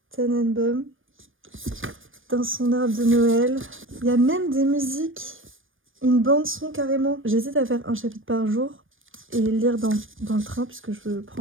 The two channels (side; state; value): left; late; 0.59 ms